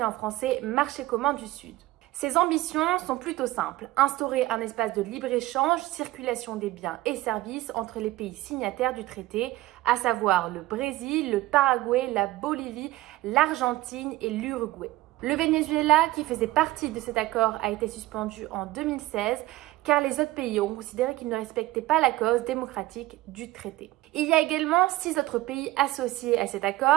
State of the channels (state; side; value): quieter; left; 17.7 dB